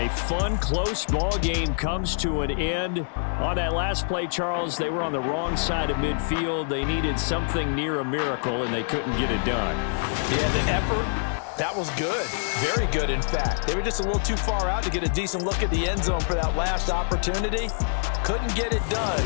fun, close ball game comes to an end. On that last play, Charles, they were on the wrong side of midfield. They needed something near a miracle, and they couldn't get it done. Yeah, the effort, that was good. Very good, in fact. They were just a little too far out to get a decent look at the end zone for that last opportunity. Couldn't get it done.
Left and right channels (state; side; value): silent; right; digital silence